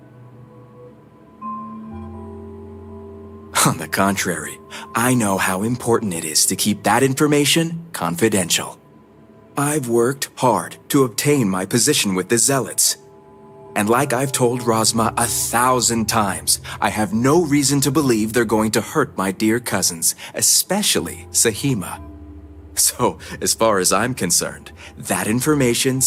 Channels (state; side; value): identical; both; correlation 1.00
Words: On the contrary, I know how important it is to keep that information confidential. I've worked hard to obtain my position with the Zealots. And like I've told Rosma 1,000 times, I have no reason to believe they're going to hurt my dear cousins, especially Sahima. So, as far as I'm concerned, that information